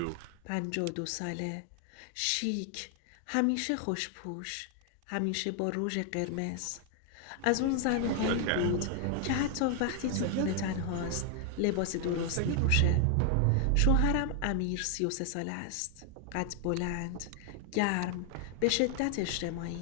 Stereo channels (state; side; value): different; both; correlation 0.00